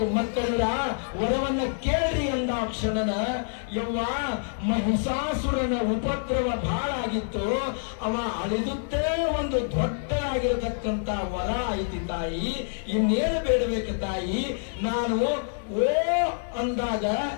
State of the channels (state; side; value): silent; right; digital silence